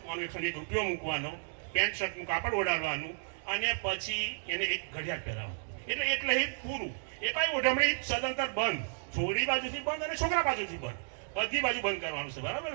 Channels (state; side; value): silent; left; digital silence